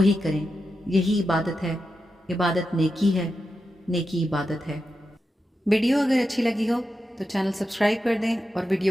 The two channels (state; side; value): normal; both; correlation 0.89